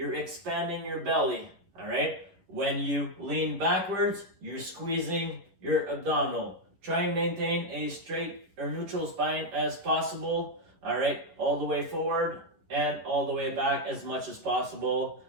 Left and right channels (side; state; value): left; late; 11 ms